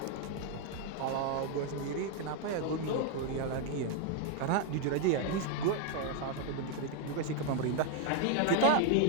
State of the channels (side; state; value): both; different; correlation 0.01